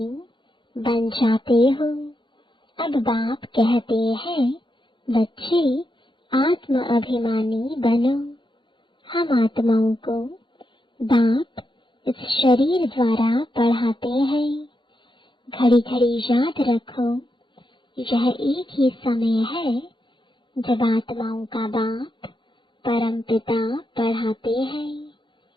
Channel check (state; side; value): late; right; 0.23 ms